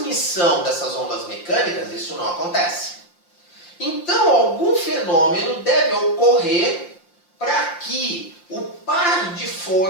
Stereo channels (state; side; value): late; right; 5.7 ms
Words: dessas ondas mecânicas isso não acontece. Então algum fenômeno deve ocorrer para que o par de